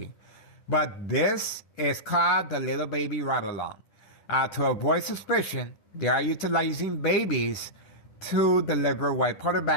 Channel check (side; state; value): right; late; 10 ms